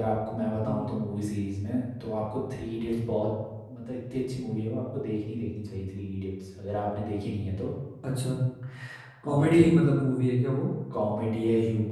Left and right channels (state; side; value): identical; both; correlation 1.00